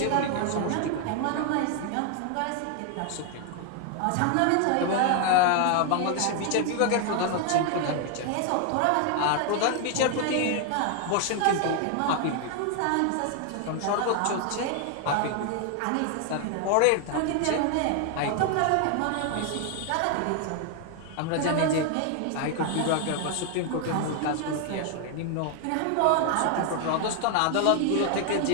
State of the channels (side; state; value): both; different; correlation 0.00